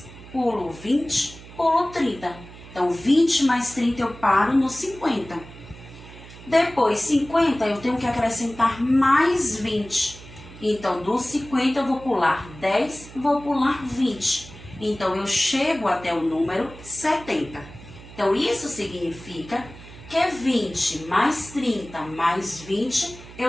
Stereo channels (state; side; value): noise; right; hum, 18 dB below the sound